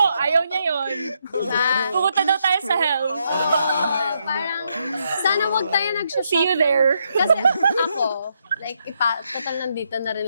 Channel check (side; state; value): both; inverted; correlation -0.78